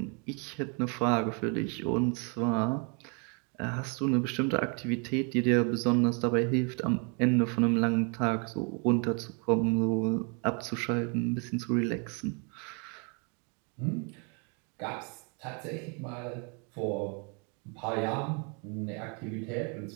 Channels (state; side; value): quieter; left; 36.0 dB